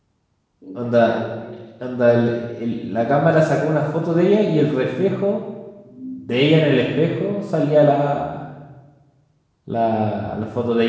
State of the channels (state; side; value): identical; both; correlation 1.00